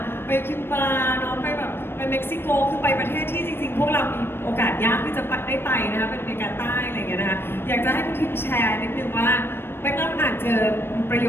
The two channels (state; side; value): late; right; 0.11 ms